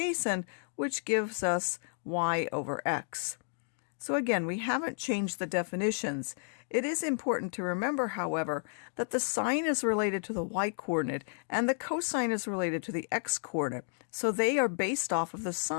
which gives us y over x. So again, we haven't changed the definitions. It is important to remember, however, that the sine is related to the y-coordinate and the cosine is related to the x-coordinate. So they are based off of the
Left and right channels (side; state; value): right; silent; digital silence